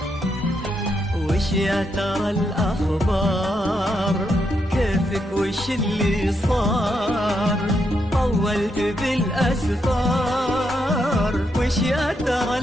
وش يا ترى الأخبار، كيفك وش اللي صار، طولت بالأسفار. وش يا ترى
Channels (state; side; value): normal; both; correlation 0.80